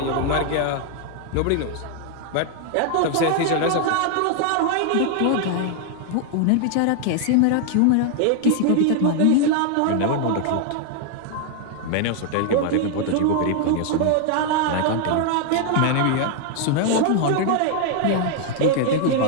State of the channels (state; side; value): different; both; correlation 0.00